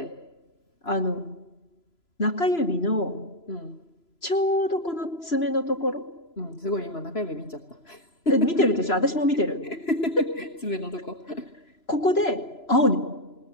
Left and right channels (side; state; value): right; late; 3.0 ms